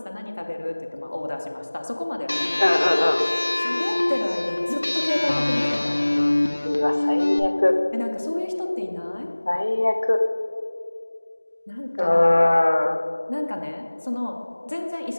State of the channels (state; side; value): inverted; both; correlation -1.00